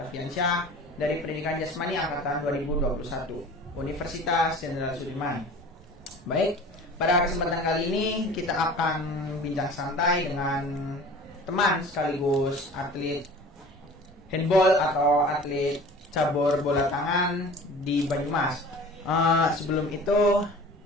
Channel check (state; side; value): normal; both; correlation 0.42